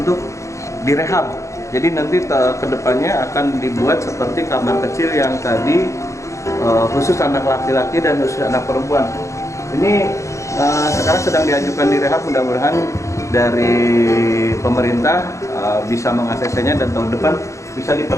direhab. Jadi nanti kedepannya akan dibuat seperti kamar kecil yang tadi, khusus anak laki-laki dan khusus anak perempuan. Ini sekarang sedang diajukan direhab, mudah-mudahan dari pemerintah bisa mengaksesnya dan tahun depan bisa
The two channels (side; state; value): right; late; 0.15 ms